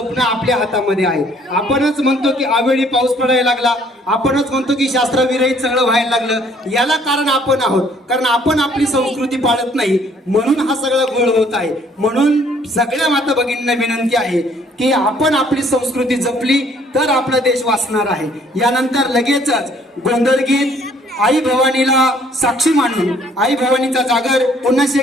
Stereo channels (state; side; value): normal; both; correlation 0.61